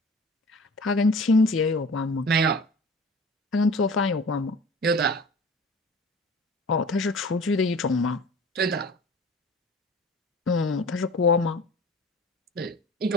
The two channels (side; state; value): both; normal; correlation 0.42